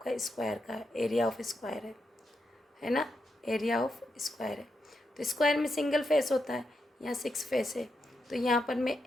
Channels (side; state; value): both; normal; correlation 0.84